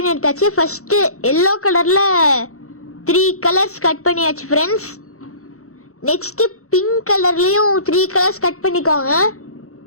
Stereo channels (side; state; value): right; late; 0.64 ms